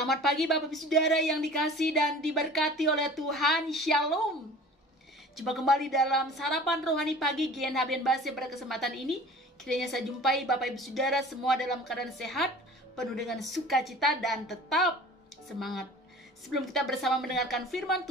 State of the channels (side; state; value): both; normal; correlation 0.43